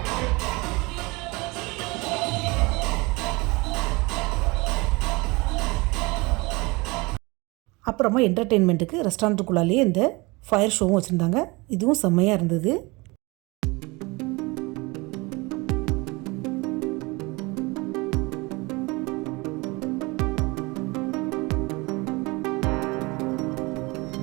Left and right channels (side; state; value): left; quieter; 25.1 dB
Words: அப்புறமா என்டர்டெயின்மெண்ட்டுக்கு ரெஸ்டாரண்ட்டுக்குள்ளாலேயே இந்த ஃபயர் ஷோவும் வச்சுருந்தாங்க. இதுவும் செம்மையாக இருந்தது.